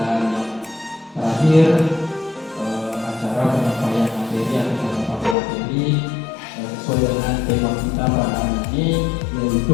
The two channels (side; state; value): right; drops out; at 5.4 s